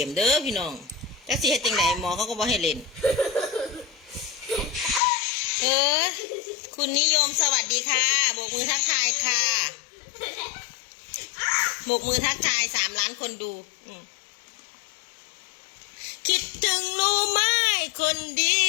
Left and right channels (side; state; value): right; drops out; at 5.0 s